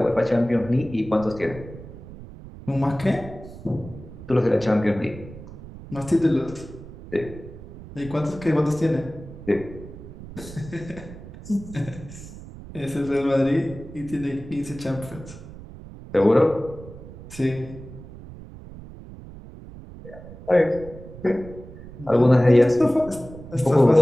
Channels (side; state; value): right; noise; rumble, 15 dB below the sound